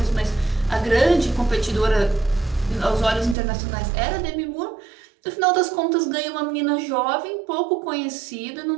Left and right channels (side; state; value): left; drops out; at 3.4 s